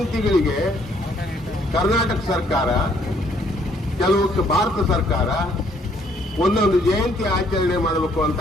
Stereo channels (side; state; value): both; normal; correlation 0.66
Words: ಕರ್ನಾಟಕ ಸರ್ಕಾರ, ಕೆಲವು ಭಾರತ ಸರ್ಕಾರ ಒಂದೊಂದು ಜಯಂತಿ ಆಚರಣೆ ಮಾಡಬೇಕು ಅಂತ